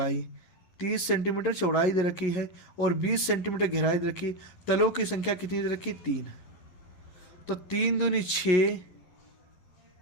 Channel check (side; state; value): right; late; 11 ms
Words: 30 सेंटीमीटर चौड़ाई दे रखी है, और 20 सेंटीमीटर गहराई दे रखी। तलों की संख्या कितनी दे रखी, 3। तो 3 दूनी 6